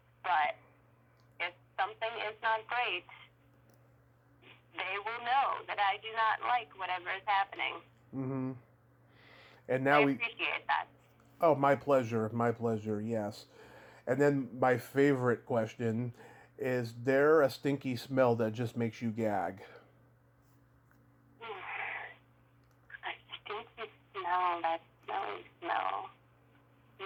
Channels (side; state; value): both; identical; correlation 1.00